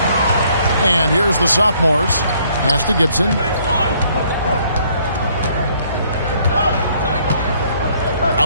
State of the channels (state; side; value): inverted; both; correlation -0.64